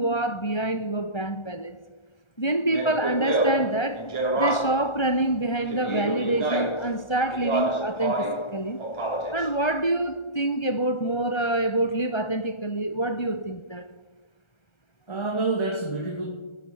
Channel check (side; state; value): right; late; 1.4 ms